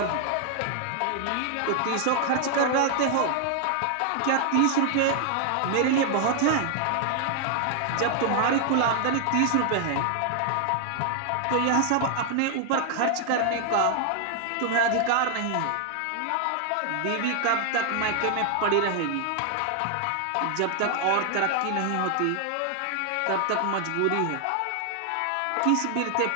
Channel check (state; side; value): different; both; correlation 0.00